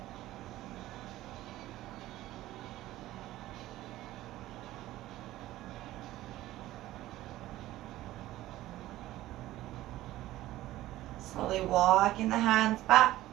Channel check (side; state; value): left; quieter; 15.6 dB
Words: Slowly walking the hands back